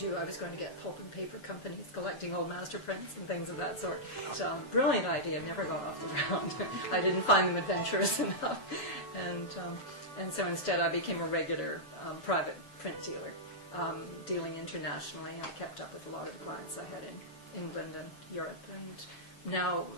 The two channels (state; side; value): late; right; 7.0 ms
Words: I was going to get pulp and paper companies collecting old master prints and things of that sort. So, brilliant idea, never got off the ground. I didn't find them adventurous enough. And so instead I became a regular private print dealer, dealing internationally. I kept up with a lot of the clients I had in England and Europe, and now